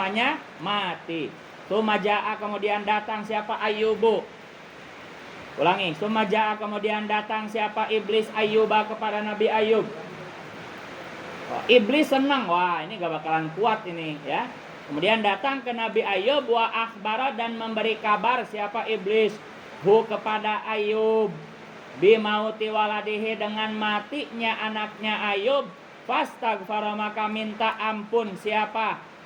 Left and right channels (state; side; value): identical; both; correlation 1.00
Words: mati. Sumaja'a, kemudian datang siapa Ayyubu. Ulangi, sumaja'a, kemudian datang siapa iblis Ayyuba, kepada Nabi Ayub. Iblis senang, wah ini gak bakalan kuat ini ya. Kemudian datang ke Nabi Ayub, wa akhbara, dan memberi kabar siapa iblis kepada Ayub, bimauti waladihi, dengan matinya anaknya Ayub. Fastaghfara, maka minta ampun siapa